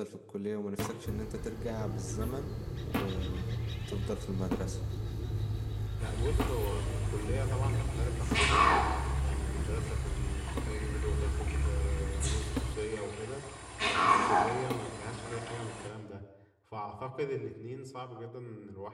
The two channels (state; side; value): identical; both; correlation 1.00